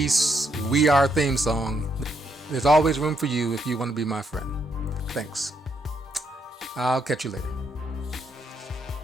We Are theme song, there's always room for you if you want to be my friend. Thanks. I'll catch you later.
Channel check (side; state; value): both; normal; correlation 0.76